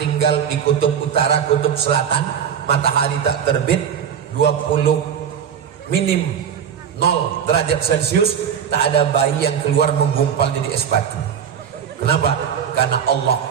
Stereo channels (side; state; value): left; quieter; 8.1 dB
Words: di kutub utara, kutub selatan, matahari tak terbit, 20 minim 0 derajat Celcius, tak ada bayi yang keluar menggumpal jadi es batu. Kenapa? Karena Allah